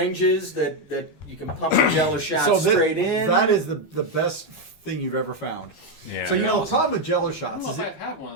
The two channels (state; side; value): late; right; 12 ms